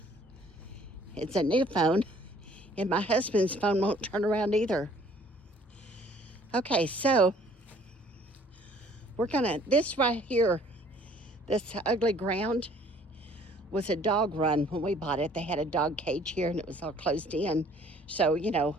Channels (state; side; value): normal; both; correlation 0.57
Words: It's a new phone, and my husband's phone won't turn around either. Okay, so this right here, this ugly ground was a dog run when we bought it. They had a dog cage here and it was all closed in. So, you know,